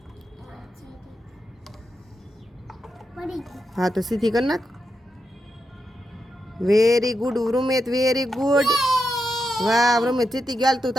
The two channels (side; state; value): both; normal; correlation 0.86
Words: હા, તો સીધી કરી નાખ. વેરી ગુડ વૃમેત, વેરી ગુડ. વાહ વૃમેત, જીતી ગયા. તું